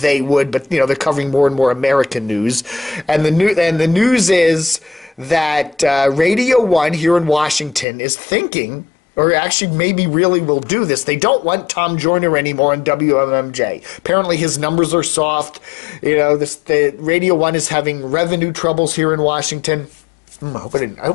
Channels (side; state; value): right; drops out; at 7.9 s